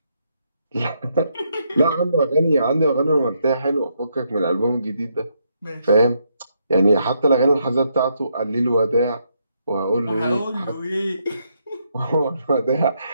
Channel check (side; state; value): both; inverted; correlation -0.77